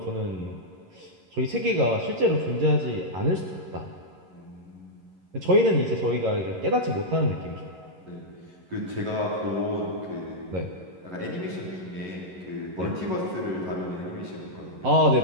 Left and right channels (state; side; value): late; left; 11 ms